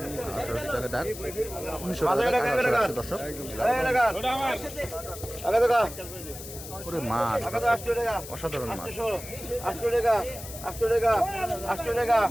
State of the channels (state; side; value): noise; left; hiss, 12 dB below the sound